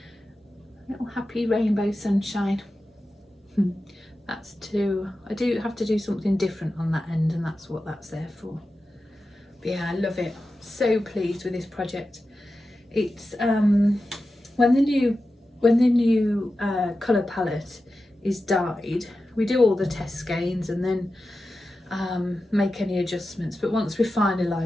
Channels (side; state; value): both; normal; correlation 0.93